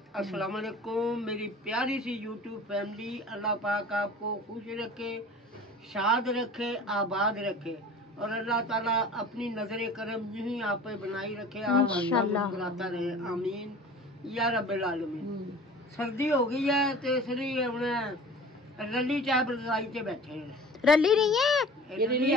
अस्सलाम वालेकुम मेरी प्यारी सी यूट्यूब फैमिली। अल्लाह पाक आपको खुश रखे, शाद रखे, आबाद रखे, और अल्लाह ताला अपनी नजर करम यूं ही आप पे बनाई रखे, आप मुस्कुराता रहे, आमीन या रब्बिल आलमीन। सर्दी हो गई है तो इसलिए हमने रली चाय रजाई से बैठे हैं। रली नहीं है ये रली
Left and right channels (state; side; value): normal; both; correlation 0.42